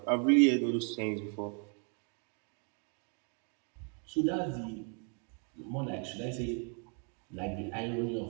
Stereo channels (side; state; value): left; quieter; 39.0 dB